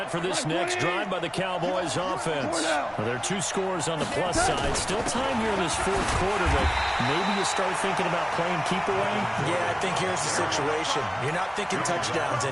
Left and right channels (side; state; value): both; identical; correlation 1.00